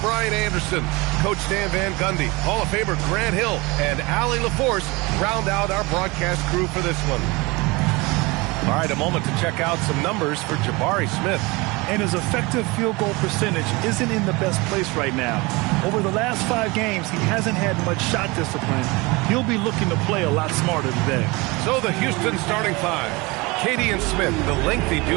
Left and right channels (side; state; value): left; quieter; 24.7 dB